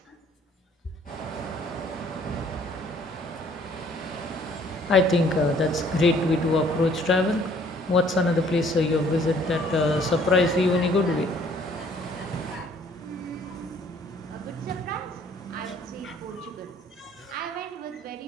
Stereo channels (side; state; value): both; normal; correlation 0.59